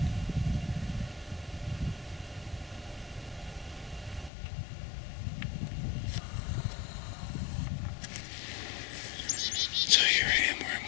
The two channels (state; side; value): drops out; right; at 4.3 s